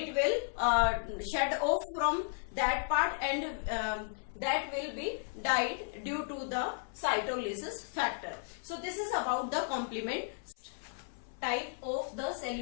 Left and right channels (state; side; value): silent; right; 55 dB below the other